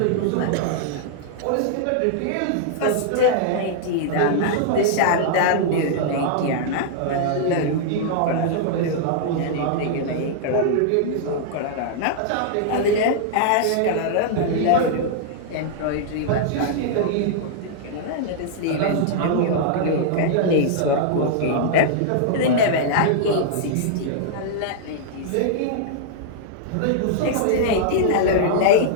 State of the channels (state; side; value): different; both; correlation -0.01